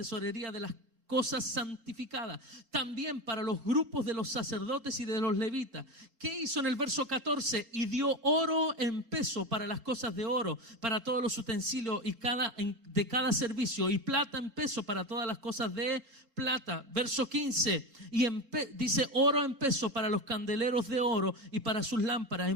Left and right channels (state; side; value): late; left; 4.4 ms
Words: de las cosas santificadas, también para los grupos de los sacerdotes y de los levitas. ¿Qué hizo en el verso 14? Y dio oro en peso para las cosas de oro, para todos los utensilios de cada servicio, y plata en peso para todas las cosas de plata. Verso 15, y dice oro en peso para los candeleros de oro y para sus lámparas.